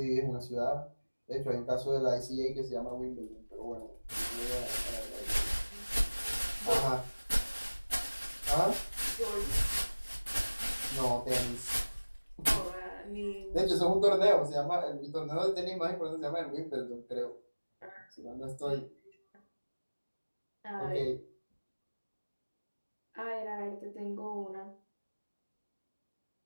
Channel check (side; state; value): both; inverted; correlation -1.00